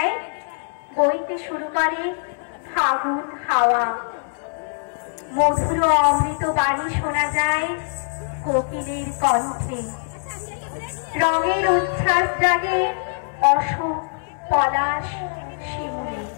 বইতে শুরু করে ফাগুন হাওয়া। মধুর অমৃত বাণী শোনা যায় কোকিলের কণ্ঠে। রঙের উচ্ছ্বাস জাগে অশোক, পলাশ, শিমুলে।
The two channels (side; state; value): right; silent; 61 dB below the other